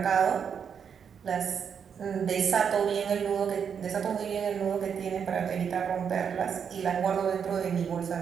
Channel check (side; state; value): left; quieter; 7.2 dB